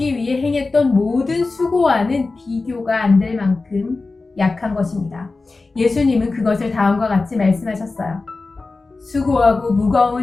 위해 행했던 모든 수고와는 비교가 안 될 만큼 약한 것입니다. 예수님은 그것을 다음과 같이 말씀하셨어요. 수고하고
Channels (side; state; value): right; quieter; 3.7 dB